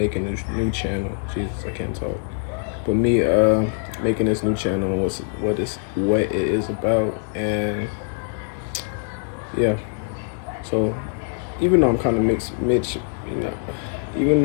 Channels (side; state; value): right; silent; 58 dB below the other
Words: this new channel. Jesus, I can't talk. But me making this new channel, what it is about, and yeah. So even though I'm kind of even